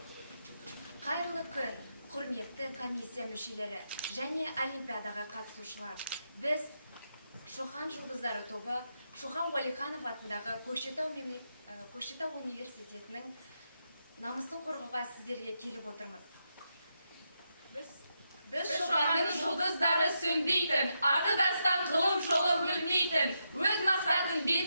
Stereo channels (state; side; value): inverted; both; correlation -0.84